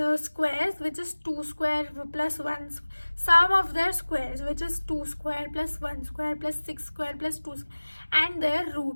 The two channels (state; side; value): inverted; both; correlation -1.00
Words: squares, which is 2 square plus 1, sum of their squares, which is 2 square plus 1 square plus 6 square plus 2 square, and their